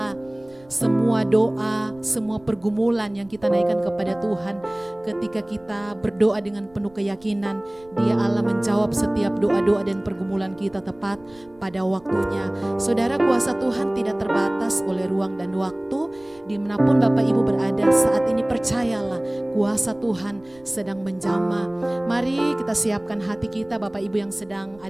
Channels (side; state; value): right; noise; rumble, 28 dB below the sound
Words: semua doa, semua pergumulan yang kita naikkan kepada Tuhan, ketika kita berdoa dengan penuh keyakinan, Dia Allah menjawab setiap doa-doa dan pergumulan kita tepat pada waktunya. Saudara, kuasa Tuhan tidak terbatas oleh ruang dan waktu. Dimanapun Bapak Ibu berada saat ini, percayalah kuasa Tuhan sedang menjamah. Mari kita siapkan hati kita, Bapak Ibu yang sedang